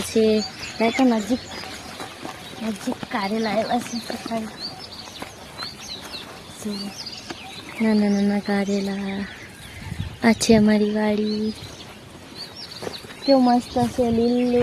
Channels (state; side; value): identical; both; correlation 1.00